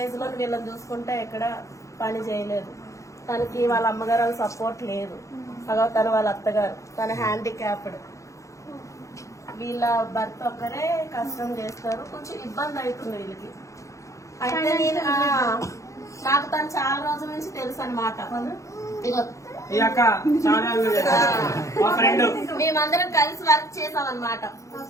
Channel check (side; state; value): right; late; 0.15 ms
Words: ఏజ్ లో వీళ్ళని చూసుకుంటే ఎక్కడ పని చేయలేదు. తనకి వాళ్ళ అమ్మగారు వాళ్ళ సపోర్ట్ లేదు, తన వాళ్ళ అత్తగారు, తన హ్యాండిక్యాప్డ్. వీళ్ళ భర్త ఒక్కరే కష్టం చేస్తారు, కొంచెం ఇబ్బంది అవుతుంది వీళ్ళకి. అయితే నేను నాకు తను చాలా రోజుల నుంచి తెలుసు అనమాట. ఇగో ఈ అక్క చాలా మా ఫ్రెండ్ మేమందరం కలిసి వర్క్ చేసాం అనమాట.